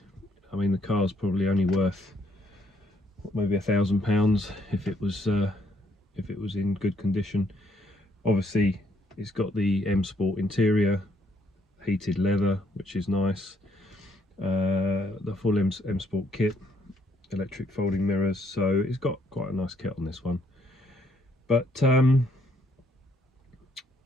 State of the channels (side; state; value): both; normal; correlation 0.70